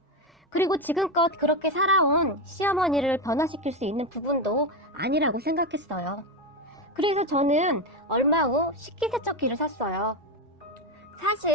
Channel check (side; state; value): both; normal; correlation 0.12